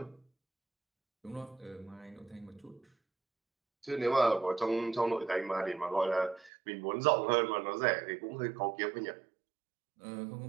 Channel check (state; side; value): drops out; left; at 6.5 s